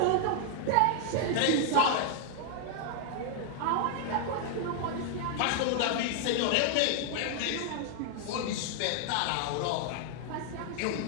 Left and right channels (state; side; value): different; both; correlation 0.00